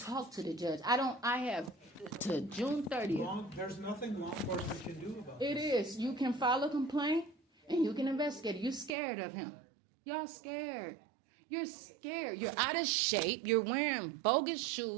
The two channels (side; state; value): left; drops out; at 8.9 s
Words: to the judge. I have to June 30th. There's nothing law enforcement can do about It this. is. You can file a complaint and you can investigate. You're scared of him. Y'all scared. You're scared. You're out of shape. You're wearing bogus